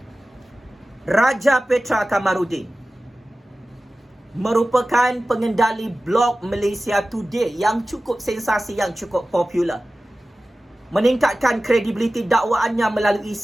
Raja Petra Kamarudin merupakan pengendali blog Malaysia Today yang cukup sensasi, yang cukup popular. Meningkatkan kredibiliti dakwaannya melalui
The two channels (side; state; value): both; normal; correlation 0.96